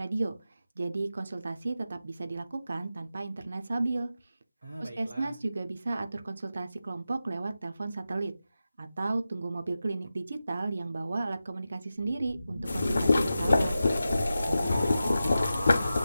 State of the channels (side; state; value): both; inverted; correlation -0.92